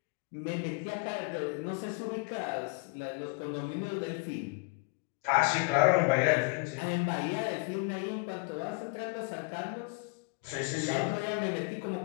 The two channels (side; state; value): right; quieter; 29.8 dB